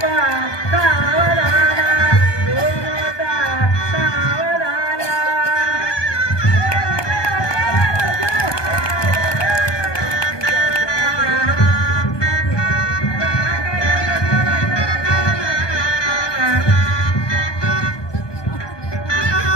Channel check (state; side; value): late; right; 1.2 ms